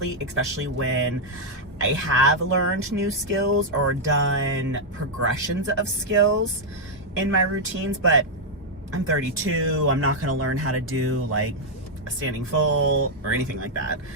especially when I have learned new skills or done progressions of skills in my routines. But I'm 32, I'm not gonna learn how to do like a standing full or anything like that.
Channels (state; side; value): normal; both; correlation -0.02